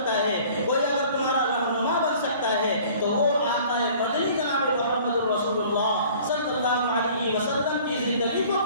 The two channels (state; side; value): inverted; both; correlation -0.50